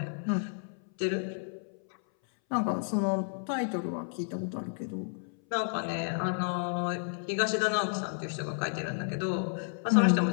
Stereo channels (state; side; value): silent; right; 57 dB below the other